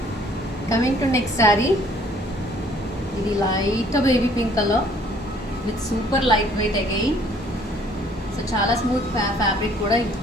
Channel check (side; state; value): both; normal; correlation 0.59